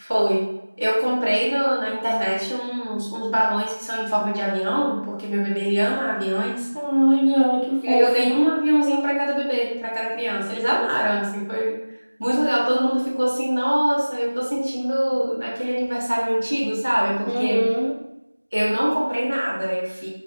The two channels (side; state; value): both; inverted; correlation -1.00